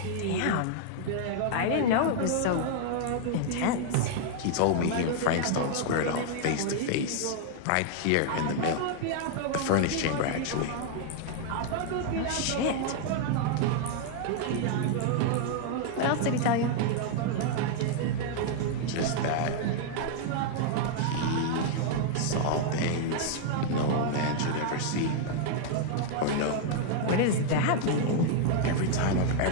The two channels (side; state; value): both; different; correlation -0.01